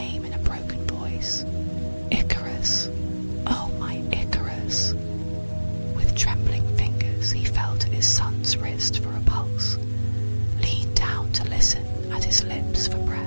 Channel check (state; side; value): inverted; both; correlation -1.00